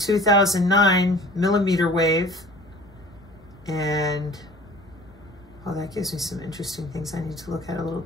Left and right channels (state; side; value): normal; both; correlation 0.46